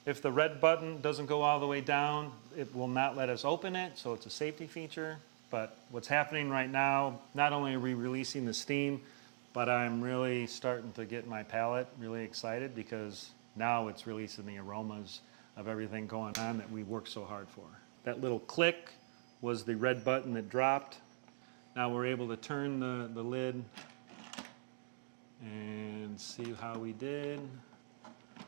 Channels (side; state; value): left; silent; digital silence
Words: If the red button doesn't go all the way down, it will not let us open it, so it's a safety feature. But what's happening right now, not only are we releasing the steam, but I'm really starting to get my palate really excited because now it's releasing the aromas of everything going on that we worked so hard for. That little click was the red button that dropped. Now we're able to turn the lid and see how we did.